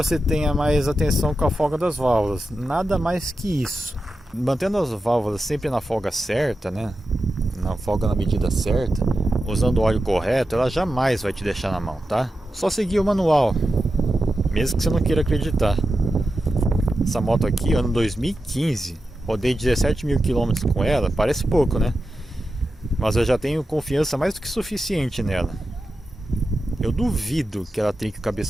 tenha mais atenção com a folga das válvulas, nada mais que isso. Mantendo as válvulas sempre na folga certa, né? Na folga na medida certa, usando o óleo correto, ela jamais vai te deixar na mão, tá? Só seguir o manual, mesmo que você não queira acreditar. Essa moto aqui, ano 2015, rodei 17.000 km com ela, parece pouco, né? Mas eu já tenho confiança mais do que suficiente nela. Eu duvido que ela trinque o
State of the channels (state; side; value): normal; both; correlation 0.90